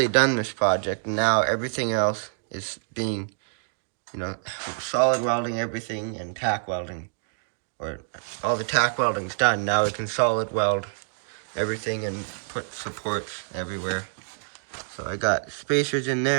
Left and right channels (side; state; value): left; silent; digital silence